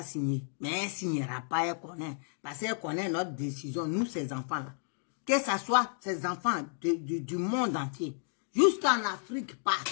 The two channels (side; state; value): right; silent; digital silence